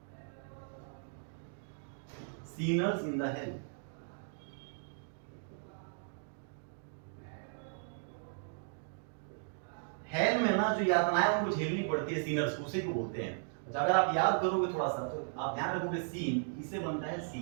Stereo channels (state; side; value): silent; left; digital silence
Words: sinners in the hell। Hell में ना जो यातनाएं उनको झेलनी पड़ती है सीनर्स को, उसी को बोलते हैं। अगर आप याद करोगे थोड़ा सा तो आप ध्यान रखोगे सीन, इससे बनता है